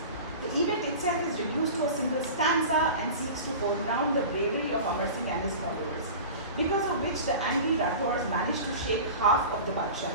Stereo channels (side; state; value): both; inverted; correlation -0.34